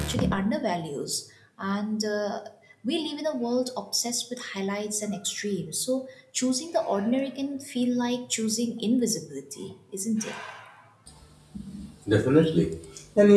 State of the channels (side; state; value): both; identical; correlation 1.00